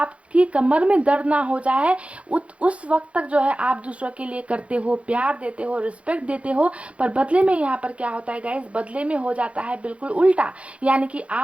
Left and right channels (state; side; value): late; left; 0.062 ms